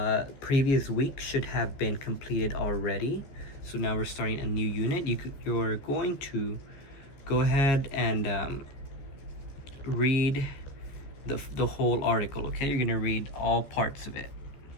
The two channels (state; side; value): late; right; 15 ms